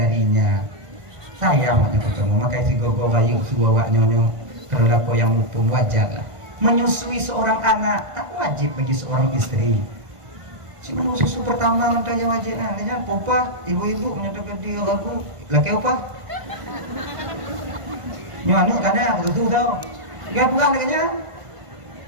Sayang ketemu, maka si gogo bayu suwa nyonyo kalau lako yang mumpung wajar lah. Menyusui seorang anak tak wajib bagi seorang istri. Cuma susu pertama nanti yang wajib nah, popa ibu-ibu menyatakan dia aku laki apa? Nyanyi kadang betul tau. Gak pulang katanya.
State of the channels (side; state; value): left; late; 1.5 ms